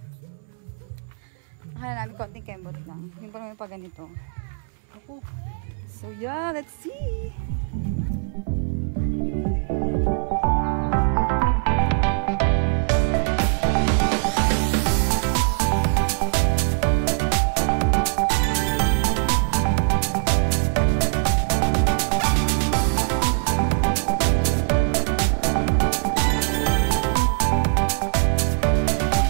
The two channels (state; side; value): silent; left; 64 dB below the other